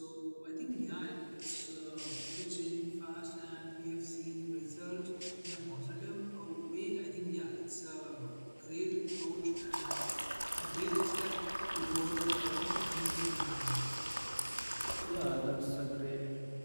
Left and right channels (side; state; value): both; inverted; correlation -1.00